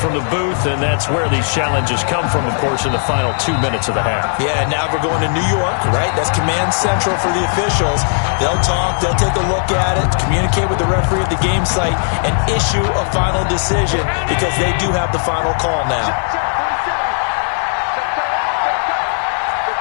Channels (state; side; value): silent; right; 57 dB below the other